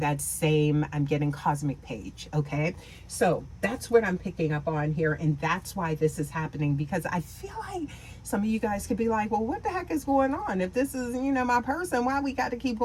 that same, I'm getting cosmic page. Okay. So that's what I'm picking up on here. And that's why this is happening, because I feel like some of you guys could be like, well, what the heck is going on? If this is, my person, why we got to keep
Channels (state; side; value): identical; both; correlation 1.00